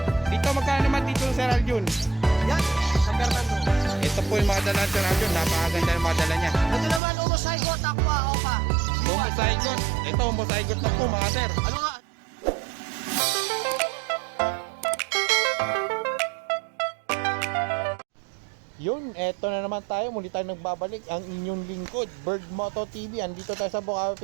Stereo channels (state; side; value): drops out; left; at 7.0 s